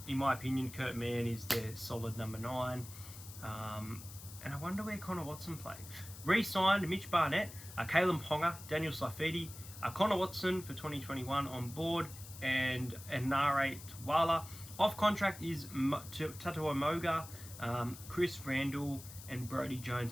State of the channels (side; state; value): left; noise; hiss, 15 dB below the sound